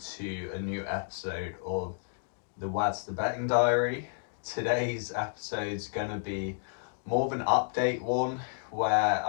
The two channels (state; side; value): silent; right; digital silence